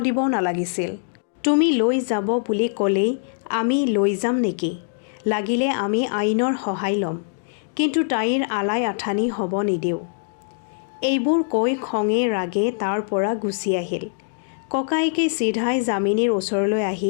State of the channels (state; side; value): silent; right; digital silence